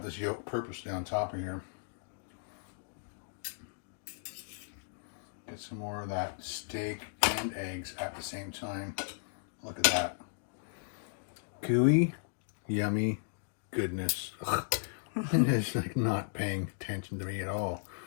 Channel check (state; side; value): silent; right; digital silence